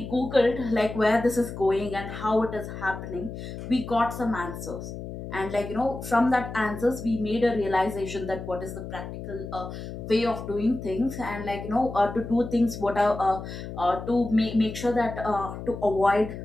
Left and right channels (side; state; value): left; noise; hum, 9 dB below the sound